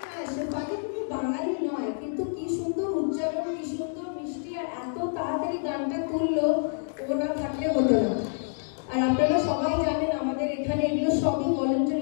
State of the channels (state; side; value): silent; right; digital silence